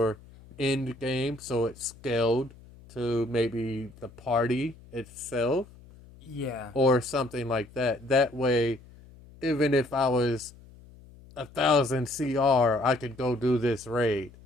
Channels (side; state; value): left; noise; hum, 22 dB below the sound